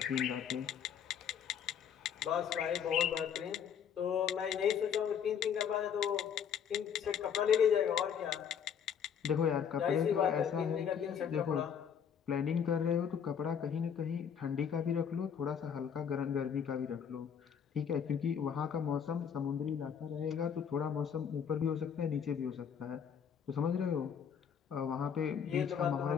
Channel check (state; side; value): quieter; right; 7.8 dB